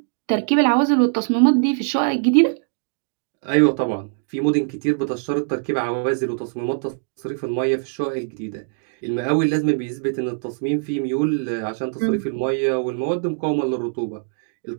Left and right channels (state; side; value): silent; left; digital silence